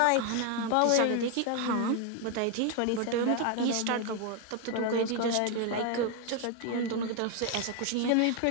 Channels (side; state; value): both; different; correlation 0.01